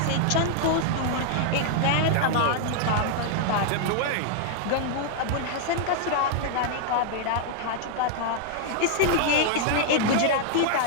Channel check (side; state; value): both; different; correlation 0.00